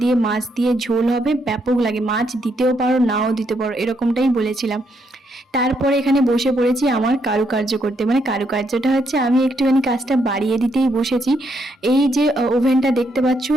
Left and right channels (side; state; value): both; normal; correlation 0.76